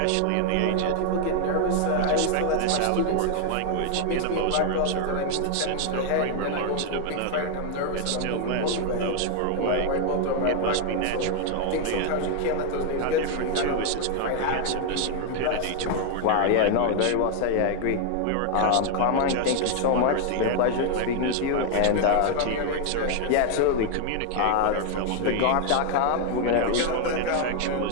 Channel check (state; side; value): different; both; correlation 0.00